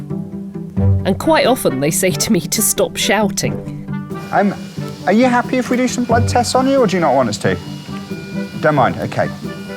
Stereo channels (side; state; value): both; identical; correlation 1.00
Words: And quite often they say to me to stop shouting. Are you happy if we do some blood tests on you, or do you not want us to? Don't mind, okay.